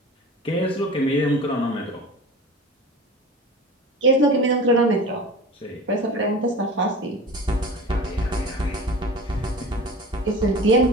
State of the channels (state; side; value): normal; both; correlation 0.36